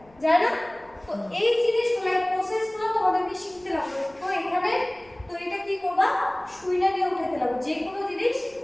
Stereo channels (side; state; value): left; noise; rumble, 29 dB below the sound